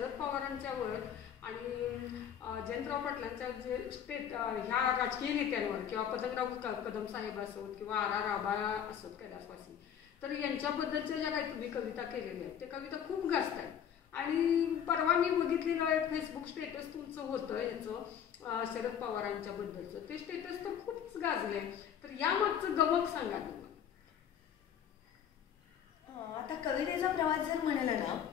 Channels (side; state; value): right; quieter; 8.8 dB